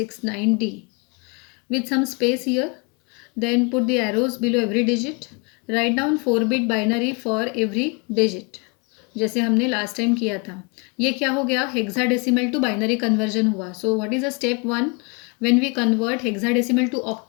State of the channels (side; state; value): right; quieter; 31.3 dB